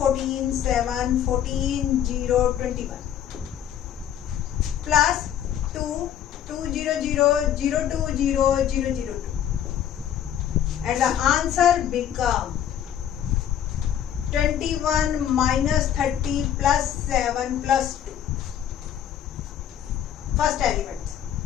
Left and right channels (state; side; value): quieter; right; 10.1 dB